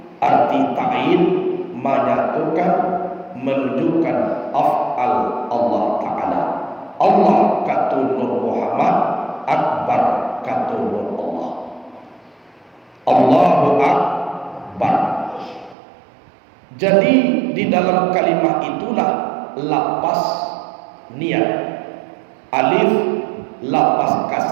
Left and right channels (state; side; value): drops out; left; at 15.8 s